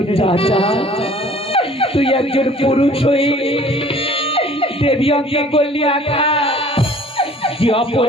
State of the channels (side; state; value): both; normal; correlation 0.51